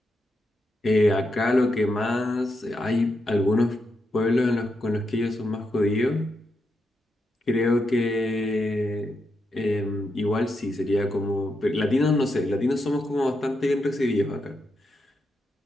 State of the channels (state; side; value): normal; both; correlation 0.83